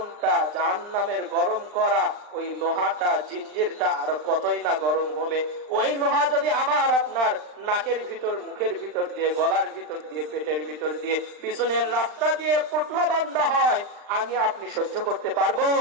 জাহান্নামের গরম করা ওই লোহাটা, জিঞ্জিরটা আর কতই না গরম হবে। ওই লোহা যদি আমার আপনার নাকের ভিতর, মুখের ভিতর দিয়ে, গলার ভিতর দিয়ে, পেটের ভিতর দিয়ে, পিছনের রাস্তা দিয়ে পুটলা বাঁধা হয়, আমি আপনি সহ্য করতে পারবো?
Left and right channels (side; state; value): left; late; 39 ms